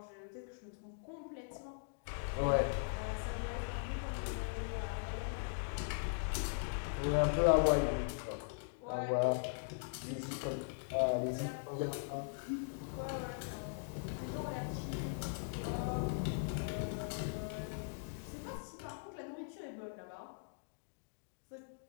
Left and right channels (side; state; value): right; silent; digital silence